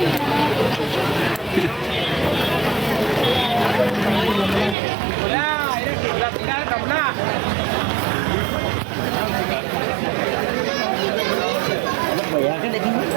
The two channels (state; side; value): drops out; left; at 4.8 s